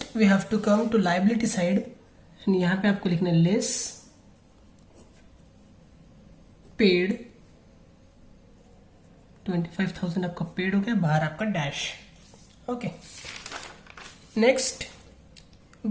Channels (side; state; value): both; identical; correlation 1.00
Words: we have to come to liability side and यहाँ पे आपको लिखना है लेस पेड. 25,000 आपका पेड हो गया, बाहर आपका dash. Okay. Next,